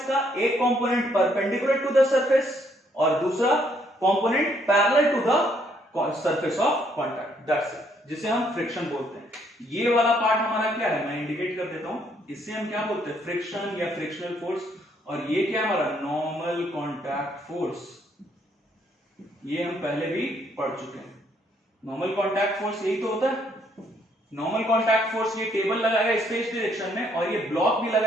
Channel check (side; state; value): both; normal; correlation 0.69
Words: एक component perpendicular to the surface और दूसरा component parallel to the surface of contact, that's it, जिसे हम फ्रिक्शन बोलते हैं। ये वाला पार्ट हमारा क्या है, मैं इंडिकेट कर देता हूं। इससे हम क्या बोलते हैं? फ्रिक्शन या फ्रिक्शनल फोर्स। और ये क्या है हमारा? Normal contact force. ये हम पहले भी पढ़ चुके हैं। नॉर्मल कॉन्टैक्ट फोर्स यही तो होता है। नॉर्मल कॉन्टैक्ट फोर्स, ये टेबल लगाएगा इस डायरेक्शन में और ये ब्लॉक भी